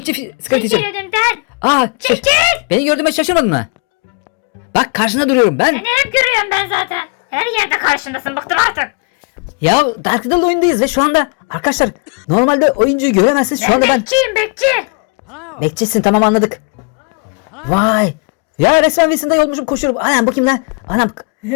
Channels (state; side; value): quieter; right; 33.8 dB